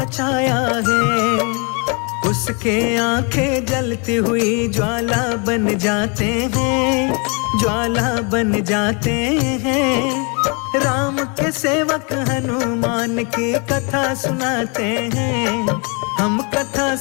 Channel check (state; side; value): quieter; right; 33.8 dB